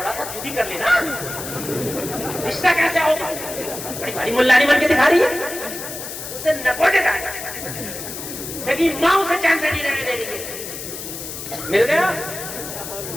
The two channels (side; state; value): left; noise; hiss, 9 dB below the sound